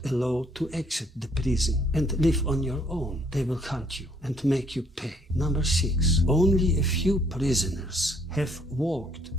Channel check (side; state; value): both; normal; correlation 0.66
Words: allowed to exit the prison and live on your own. They will hunt you and make you pay. Number 6, only a few prisoners have walked